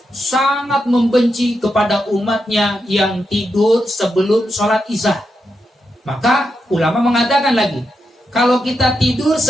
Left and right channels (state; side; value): normal; both; correlation 0.85